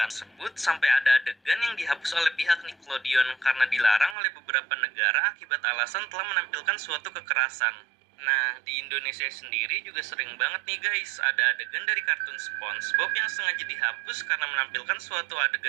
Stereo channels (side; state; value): left; drops out; at 4.2 s